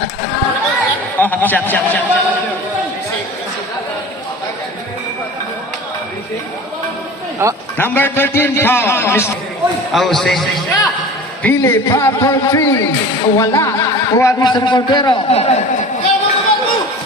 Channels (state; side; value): normal; both; correlation 0.38